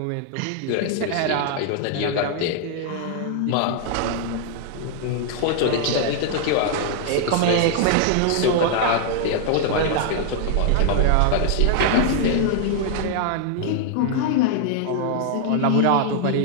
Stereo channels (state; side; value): different; both; correlation 0.00